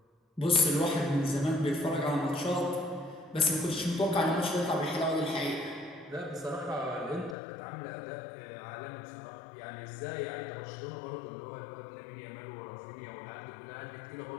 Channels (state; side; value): drops out; right; at 7.4 s